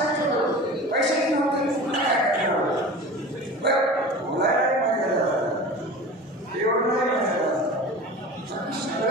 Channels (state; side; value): normal; both; correlation 0.35